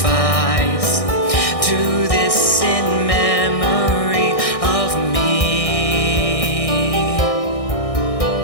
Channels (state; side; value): late; right; 1.6 ms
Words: do this in memory of me.